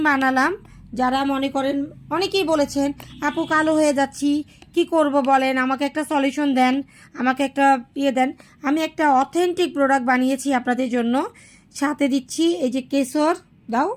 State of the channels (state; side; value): identical; both; correlation 1.00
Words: বানালাম। যারা মনে করেন, অনেকেই বলেছেন আপু কালো হয়ে যাচ্ছি, কি করব বলেন, আমাকে একটা সলিউশন দেন, আমাকে একটা দেন। আমি একটা অথেন্টিক প্রোডাক্ট বানিয়েছি আপনাদের জন্য। সাথে দিচ্ছি এই যে কেশর, দাও,